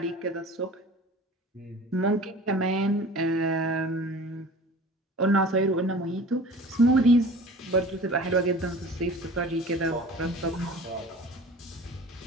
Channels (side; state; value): both; normal; correlation 0.42